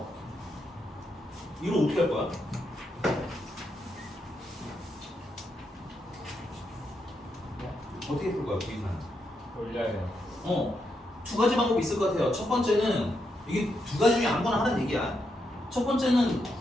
이거 어떻게 할 거야? 어떻게 풀 거야, 부의사는? 올려요. 두 가지 방법이 있을 것 같아요. 첫 번째는 이게 두 가지 중에 아무거나 하는 얘기야. 첫 번째는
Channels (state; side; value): normal; both; correlation 0.82